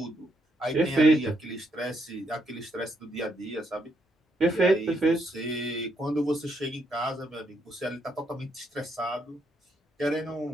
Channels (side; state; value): both; normal; correlation 0.75